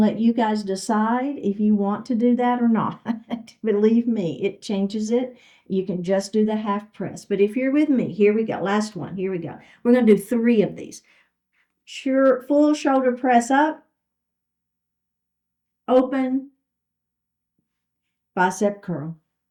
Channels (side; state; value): both; identical; correlation 1.00